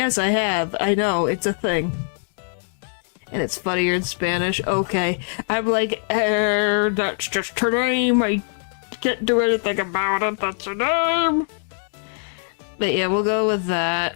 I have. I know, it's a thing. And it's funnier in Spanish. Okay. I'm like, that's just her name. I can't do anything about it. That's her name. But yeah, we'll go with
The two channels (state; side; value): silent; right; digital silence